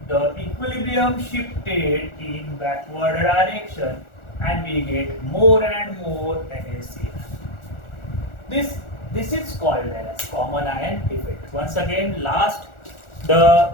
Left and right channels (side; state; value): right; late; 1.4 ms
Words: the equilibrium shifted in backward direction, and we get more and more NaCl. This is called as common ion effect. Once again, last,